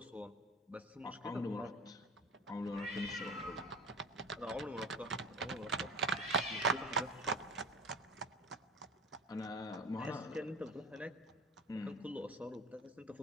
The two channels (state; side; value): normal; both; correlation 0.34